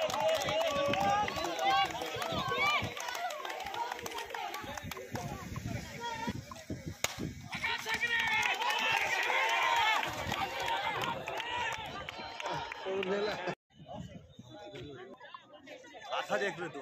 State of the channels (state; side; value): identical; both; correlation 1.00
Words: आथा देख रहे तू,